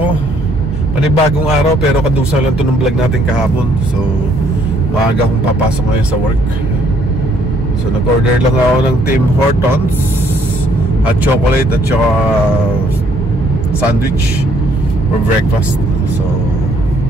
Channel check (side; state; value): both; normal; correlation 0.66